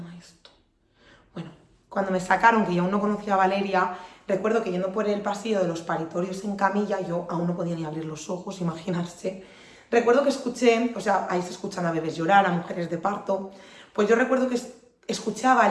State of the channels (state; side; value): identical; both; correlation 1.00